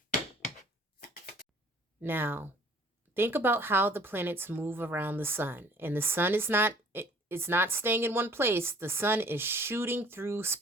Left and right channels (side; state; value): both; normal; correlation 0.53